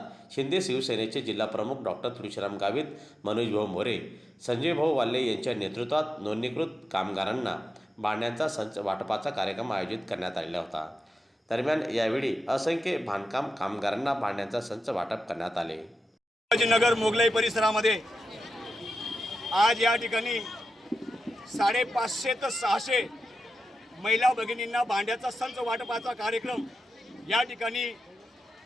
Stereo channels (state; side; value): normal; both; correlation 0.90